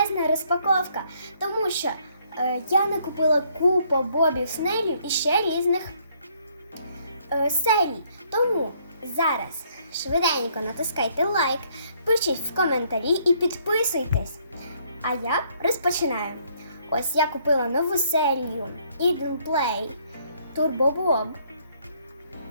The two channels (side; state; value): both; inverted; correlation -0.67